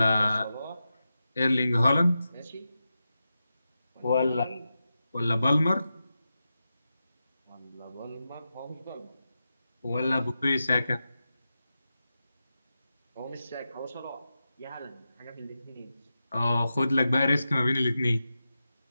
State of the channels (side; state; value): both; inverted; correlation -0.91